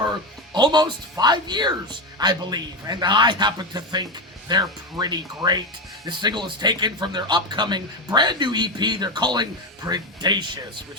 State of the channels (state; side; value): normal; both; correlation 0.15